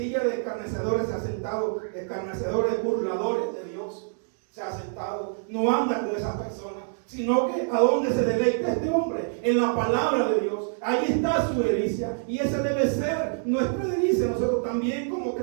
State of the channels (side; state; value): left; silent; digital silence